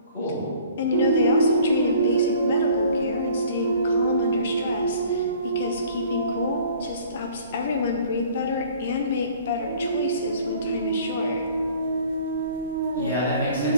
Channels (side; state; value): both; inverted; correlation -0.52